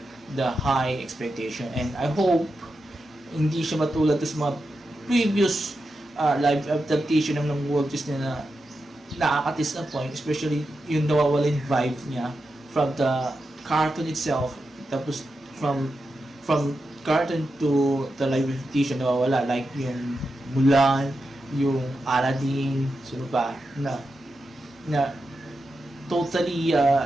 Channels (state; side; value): normal; both; correlation 0.89